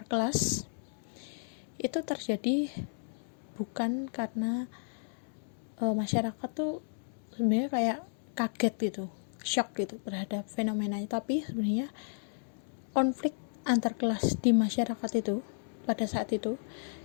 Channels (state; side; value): silent; right; digital silence